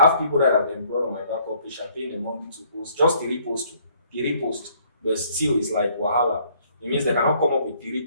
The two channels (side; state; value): both; inverted; correlation -0.63